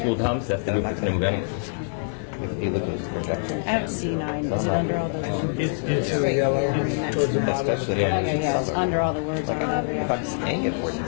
comes, that's the group that's going to move anyway. If you look at the projection. I have C9. Is it under all those words? It's Especially It's under all the words. if I'm staying at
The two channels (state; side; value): silent; right; digital silence